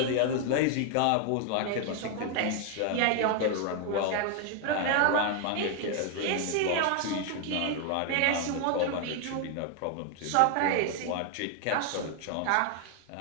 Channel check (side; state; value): both; different; correlation 0.00